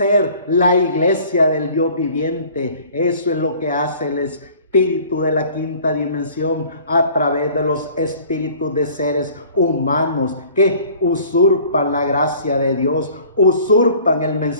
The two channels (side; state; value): both; inverted; correlation -0.51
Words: la iglesia del Dios viviente. Eso es lo que hace el espíritu de la quinta dimensión a través de los espíritus de seres humanos que usurpan la gracia de Dios, usurpan el